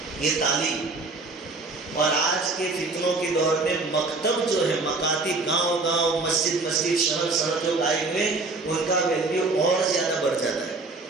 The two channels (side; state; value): left; quieter; 3.5 dB